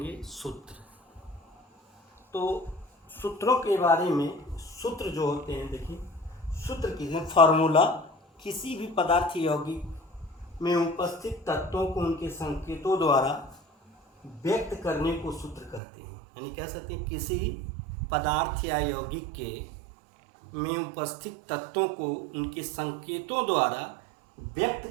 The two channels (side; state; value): left; drops out; at 15.8 s